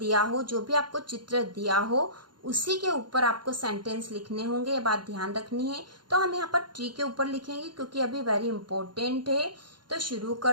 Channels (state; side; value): late; left; 0.71 ms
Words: हो, जो भी आपको चित्र दिया हो, उसी के ऊपर आपको सेंटेंस लिखने होंगे, ये बात ध्यान रखनी है। तो हम यहाँ पर ट्री के ऊपर लिखेंगे क्योंकि अभी वेरी इंपॉर्टेंट है। तो शुरू